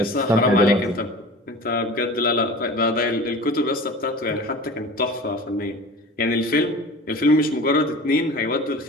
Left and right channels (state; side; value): normal; both; correlation 0.38